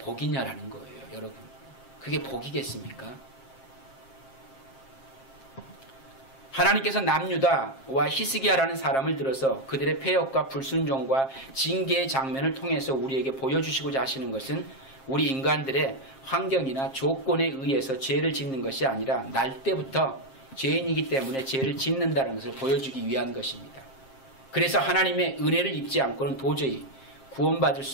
거예요. 여러분, 그게 복이겠습니까? 하나님께서 남유다와 히스기야라는 사람을 들어서 그들의 폐역과 불순종과 징계의 장면을 통해서 우리에게 보여주시고자 하시는 것은 우리 인간들의 환경이나 조건에 의해서 죄를 짓는 것이 아니라 날 때부터 죄인이기 때문에 죄를 짓는다는 것을 보여주기 위한 것입니다. 그래서 하나님의 은혜를 입지 않고는 도저히 구원받을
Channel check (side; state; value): right; late; 7.5 ms